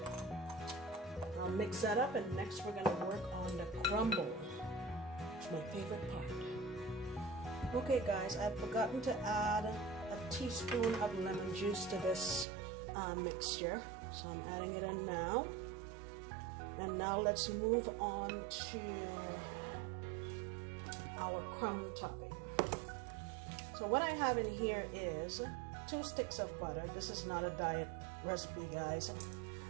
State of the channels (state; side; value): drops out; left; at 12.5 s